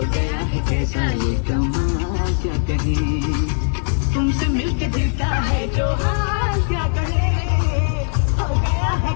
गया है कैसा ये कमाल क्या कहे तुमसे मिलके दिल का है जो हाल क्या कहे हो गया है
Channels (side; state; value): right; silent; 66 dB below the other